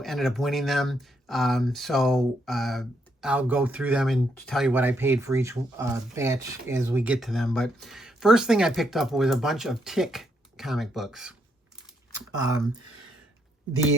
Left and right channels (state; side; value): normal; both; correlation 0.76